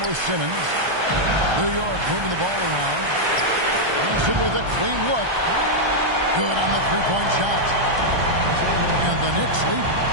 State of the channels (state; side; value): late; left; 1.3 ms